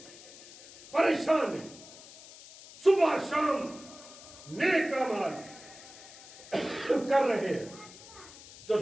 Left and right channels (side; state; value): left; noise; hiss, 18 dB below the sound